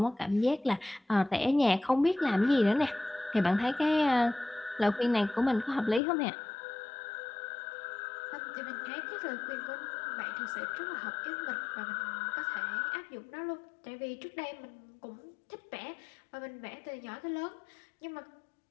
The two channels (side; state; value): right; drops out; at 6.0 s